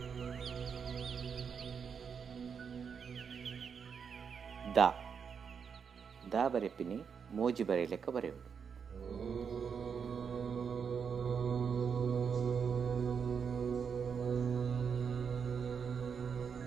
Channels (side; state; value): left; quieter; 6.5 dB